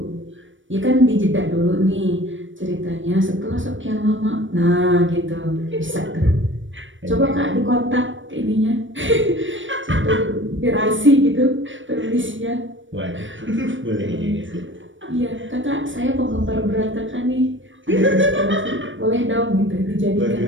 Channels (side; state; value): left; late; 0.56 ms